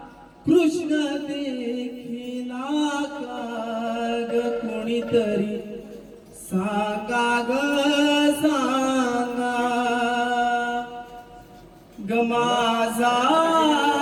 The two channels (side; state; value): both; identical; correlation 1.00